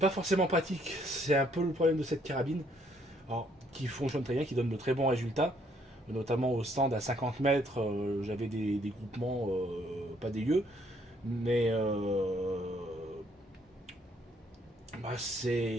forcément pratique, c'est un peu le problème de cette carabine, alors, qui fonctionne très bien, qui donne de très bons résultats, notamment au stand à 50 mètres, j'avais des groupements pas dégueux, mais bah,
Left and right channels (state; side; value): normal; both; correlation 0.68